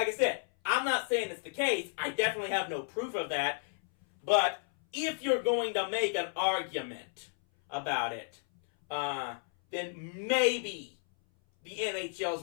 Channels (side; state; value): right; silent; 56 dB below the other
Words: I said, I'm not saying it's the case. I definitely have no proof of that. But if you're going to make an argument about it, then maybe the NHL